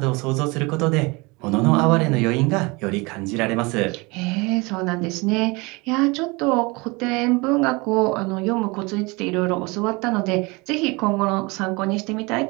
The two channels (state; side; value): quieter; left; 26.0 dB